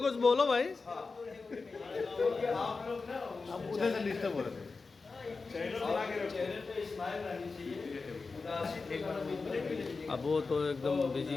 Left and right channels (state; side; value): quieter; right; 4.2 dB